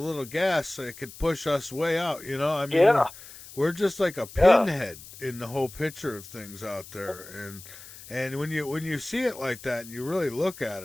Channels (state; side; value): noise; left; hiss, 17 dB below the sound